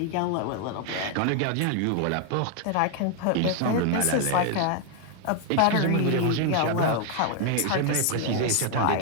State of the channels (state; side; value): different; both; correlation 0.00